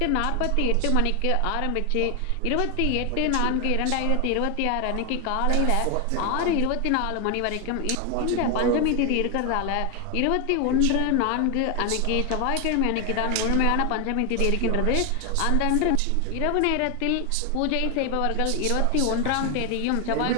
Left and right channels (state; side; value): different; both; correlation 0.01